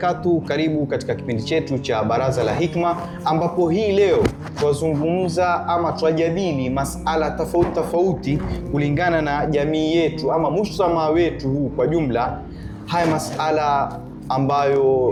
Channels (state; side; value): identical; both; correlation 1.00